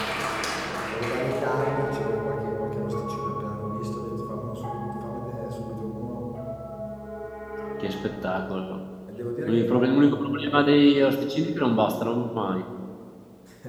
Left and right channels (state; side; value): identical; both; correlation 1.00